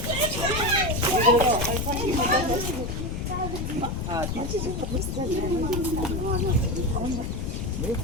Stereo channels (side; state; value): left; noise; rumble, 3 dB below the sound